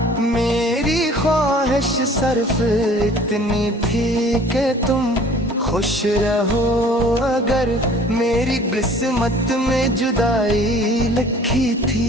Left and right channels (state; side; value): normal; both; correlation 0.51